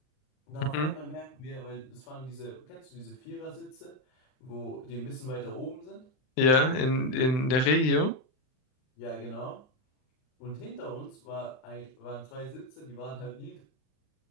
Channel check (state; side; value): late; right; 39 ms